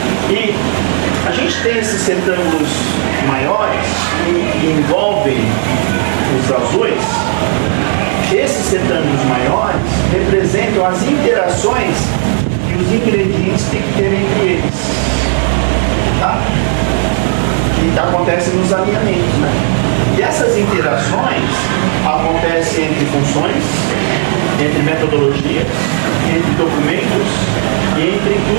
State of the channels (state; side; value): silent; left; 68 dB below the other